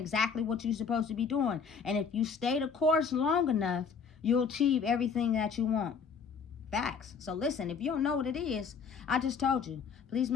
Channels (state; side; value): quieter; right; 6.0 dB